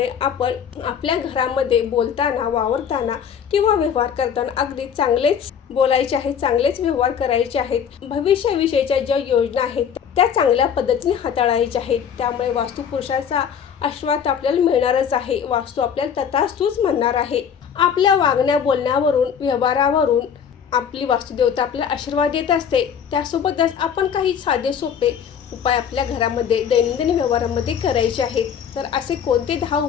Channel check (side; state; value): right; quieter; 7.8 dB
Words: आपण आपल्या घरामध्ये बोलताना, वावरताना किंवा व्यवहार करताना अगदी चांगलेच बोलायचे आहेत, चांगलेच व्यवहार करायचे आहेत. भविष्याविषयीच्या ज्या योजना आहेत त्या चांगल्या पद्धतीने हाताळायच्या आहेत. त्यामुळे वास्तुपुरुषाचा आशीर्वाद आपल्याला मिळणारच आहे. वास्तू आपल्याला तथास्तुच म्हणणार आहे. आपल्या वागण्या बोलण्यावरून, व्यवहारावरून आपली वास्तुदेवता आपल्याला आशीर्वाद देत असते. त्यासोबतच आपण काही साधे सोपे उपाय आपल्या घरामध्ये दैनंदिन व्यवहारामध्ये करायचे आहेत. तर असे कोणते 10